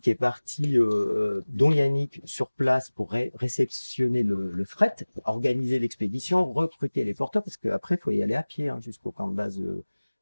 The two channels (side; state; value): both; inverted; correlation -1.00